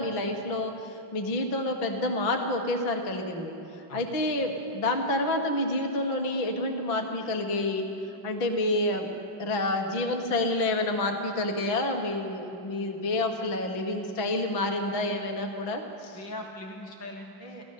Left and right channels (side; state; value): right; late; 6.0 ms